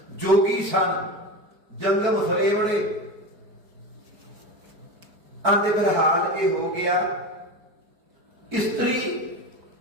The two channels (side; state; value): left; late; 4.6 ms